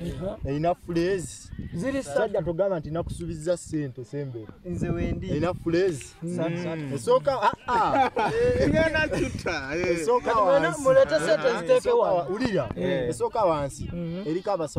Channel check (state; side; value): identical; both; correlation 1.00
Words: Erina phrase. Ziri sajja togamba nti nakusuubiza sente sembere. Nze wendi. Erina phrase. Esooka Ngenda tuta. esooka wansi. mulete sente ziteeke wa. Ulira. Esooka wansi. Eriko